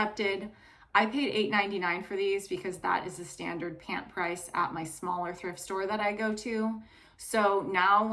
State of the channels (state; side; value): identical; both; correlation 1.00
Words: I paid $8.99 for these because that is the standard pant price at my smaller thrift store that I go to. So now